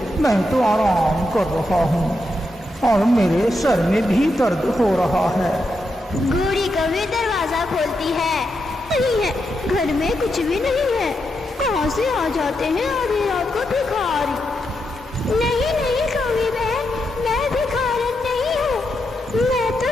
मैं तो आराम कर रहा हूँ और मेरे सर में भी दर्द हो रहा है। गोरी कभी दरवाजा खोलती है। नहीं है, घर में कुछ भी नहीं है। कहाँ से आ जाते हैं आधी रात को भिखारी? नहीं नहीं कभी बहन, मैं भिखारन नहीं हूँ। मैं तो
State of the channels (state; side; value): normal; both; correlation 0.84